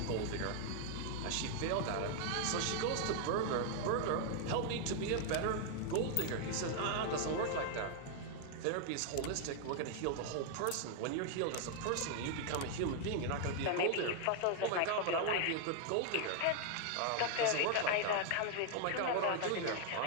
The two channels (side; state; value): both; different; correlation 0.00